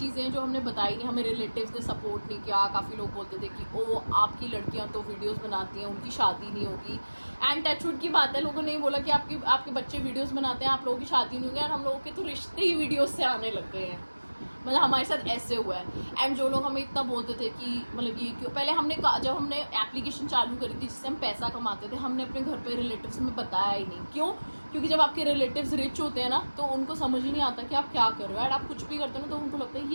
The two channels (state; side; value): inverted; both; correlation -1.00